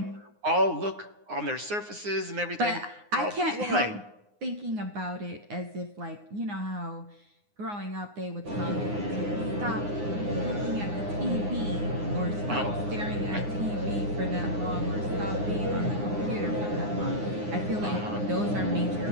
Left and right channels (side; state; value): left; late; 9.7 ms